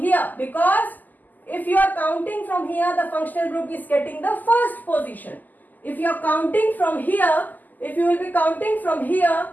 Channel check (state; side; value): late; right; 0.084 ms